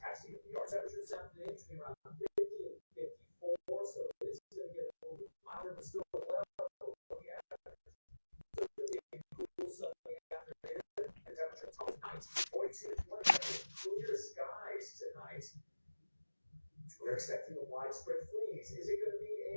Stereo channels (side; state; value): both; inverted; correlation -1.00